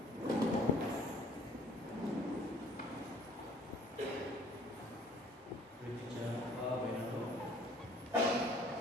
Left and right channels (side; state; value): both; normal; correlation 0.54